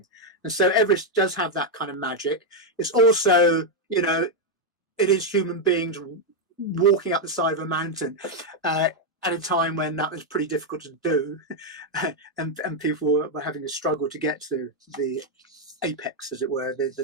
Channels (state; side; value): normal; both; correlation 0.01